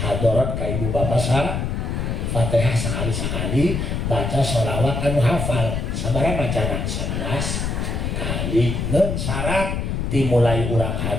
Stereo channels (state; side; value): noise; left; rumble, 1 dB below the sound